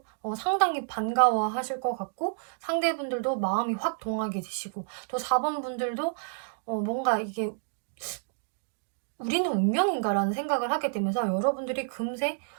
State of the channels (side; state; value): left; silent; digital silence